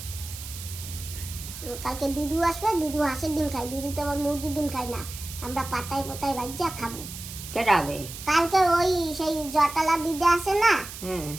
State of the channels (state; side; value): noise; right; hiss, 11 dB below the sound